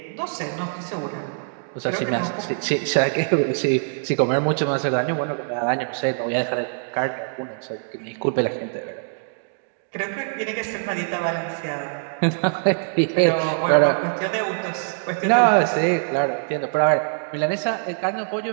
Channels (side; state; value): left; silent; digital silence